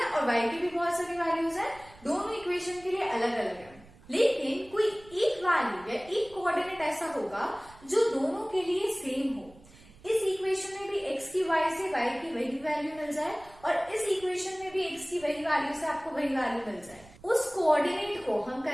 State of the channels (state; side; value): noise; right; rumble, 24 dB below the sound